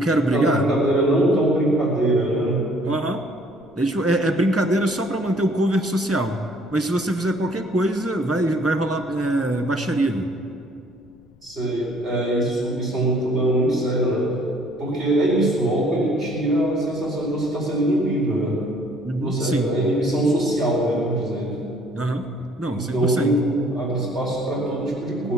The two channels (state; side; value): noise; left; rumble, 29 dB below the sound